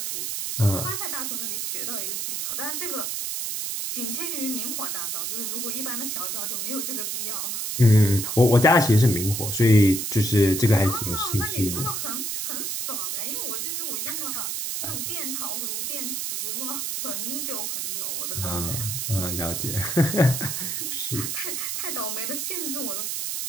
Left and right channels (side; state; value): right; noise; hiss, 2 dB below the sound